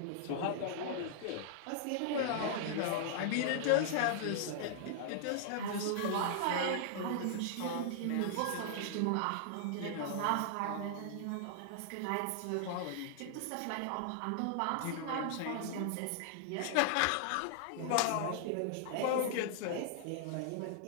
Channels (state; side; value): different; both; correlation -0.01